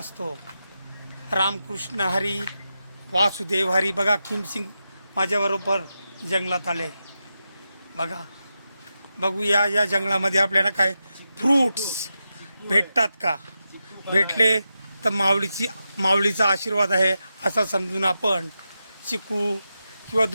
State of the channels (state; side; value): inverted; both; correlation -0.89